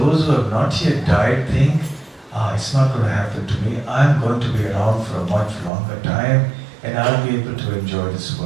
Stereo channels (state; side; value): drops out; left; at 5.7 s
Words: who have not yet died think, it's not going to happen to me. I'm going to be around for a much longer time and I'll be able to enjoy this